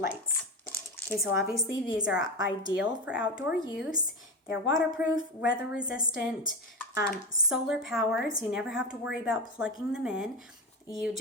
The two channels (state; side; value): normal; both; correlation 0.20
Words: Okay, so obviously these are ideal for outdoor use. They're waterproof, weather resistant, solar powered, so you never have to worry about plugging them in. You